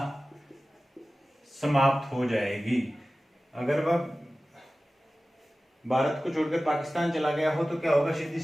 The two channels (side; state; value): both; normal; correlation 0.96